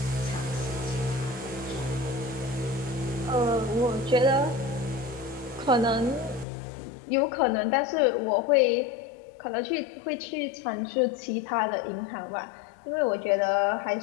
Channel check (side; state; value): right; drops out; at 6.5 s